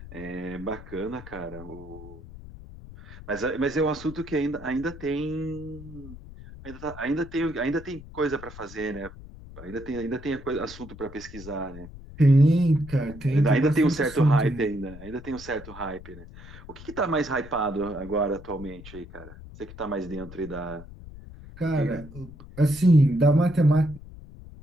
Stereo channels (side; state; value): left; noise; rumble, 16 dB below the sound